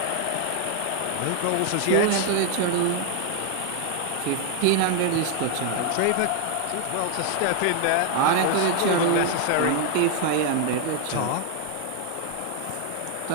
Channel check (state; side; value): different; both; correlation 0.00